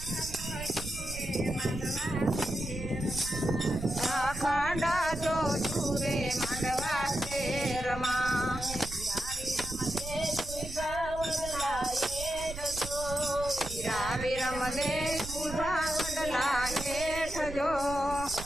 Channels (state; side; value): noise; right; rumble, 10 dB below the sound